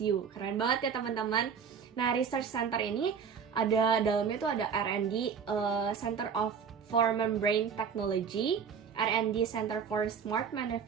Keren banget ya teman-teman. Nah, research center ini ada dalamnya tuh ada R&D, Center for Membrane Technology, R&D Center for Smart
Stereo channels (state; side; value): quieter; left; 6.7 dB